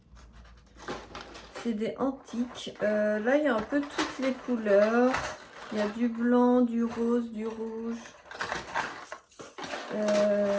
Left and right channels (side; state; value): both; identical; correlation 1.00